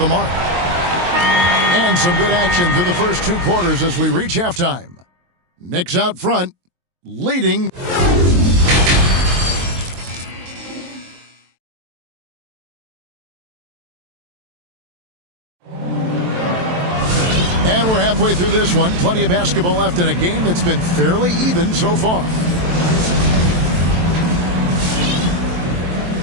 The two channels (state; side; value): late; left; 23 ms